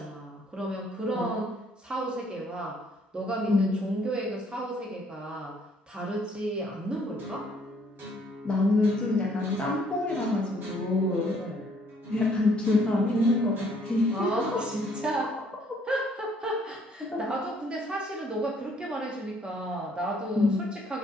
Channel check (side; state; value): both; normal; correlation 0.64